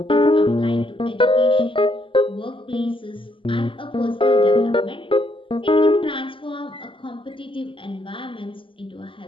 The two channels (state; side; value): late; right; 0.25 ms